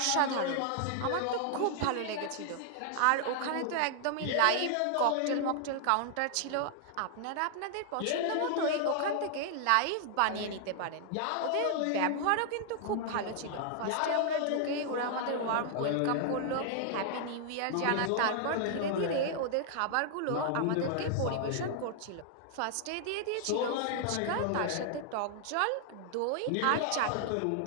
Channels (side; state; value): both; different; correlation -0.01